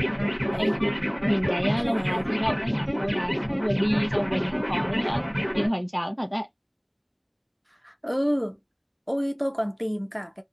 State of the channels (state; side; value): identical; both; correlation 1.00